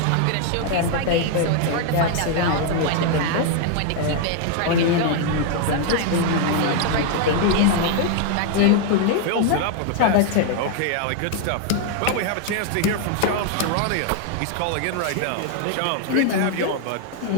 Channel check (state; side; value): different; both; correlation 0.00